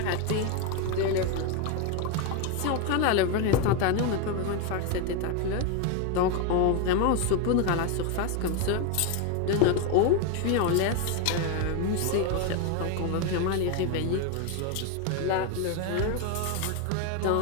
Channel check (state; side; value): different; both; correlation 0.02